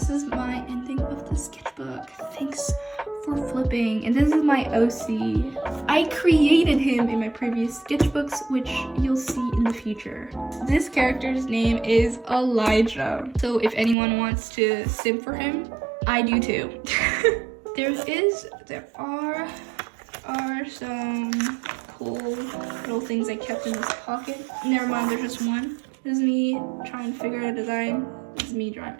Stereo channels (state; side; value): drops out; left; at 14.0 s